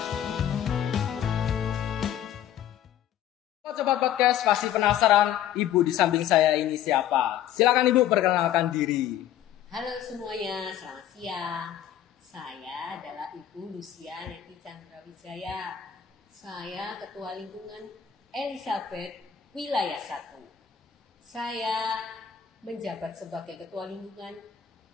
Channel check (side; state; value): right; quieter; 10.6 dB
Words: Sobat Podcast, pasti penasaran Ibu di samping saya ini siapa? Silakan Ibu perkenalkan diri. Halo semuanya, selamat siang. Saya adalah Ibu Lucia Neti Chandra Wijaya. Saya Ketua Lingkungan Elizabeth Wilayah 1. Saya menjabat sebagai Ketua Lingkungan